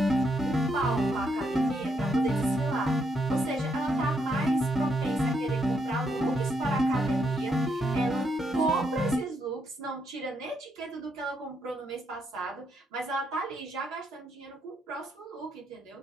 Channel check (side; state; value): both; normal; correlation 0.77